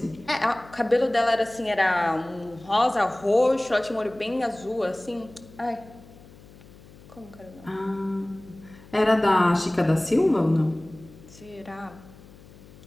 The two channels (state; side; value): noise; left; hum, 22 dB below the sound